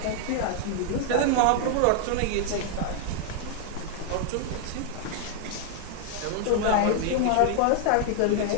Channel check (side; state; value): both; different; correlation 0.00